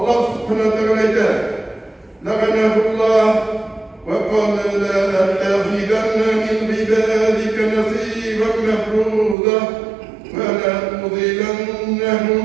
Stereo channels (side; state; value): left; drops out; at 9.3 s